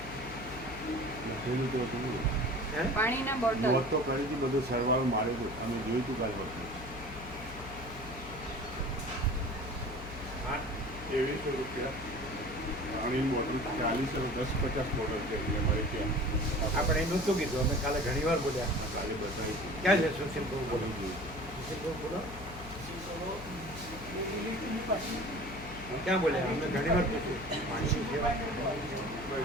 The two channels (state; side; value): noise; left; hum, 13 dB below the sound